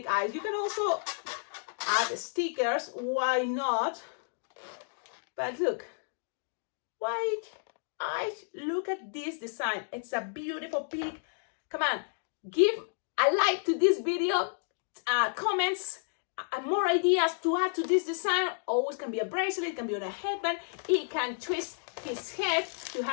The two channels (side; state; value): right; silent; digital silence